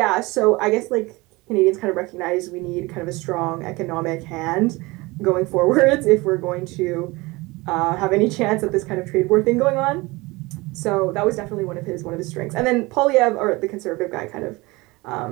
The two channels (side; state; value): left; quieter; 23.0 dB